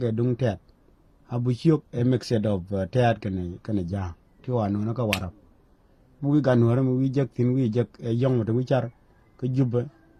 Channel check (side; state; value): both; identical; correlation 1.00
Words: e dung tet abuchuk a mixed of tet kane ja ti wanu na ka warap mu ga nuore mu wijek tin wijek e yong to wichar ke jubbe